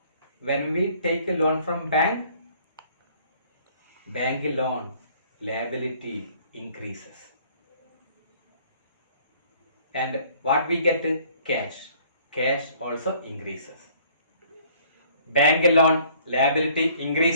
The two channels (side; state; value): both; inverted; correlation -0.58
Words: When we take a loan from bank loan liability increases. And what we get? Cash. Cash also increases. Bank loan liability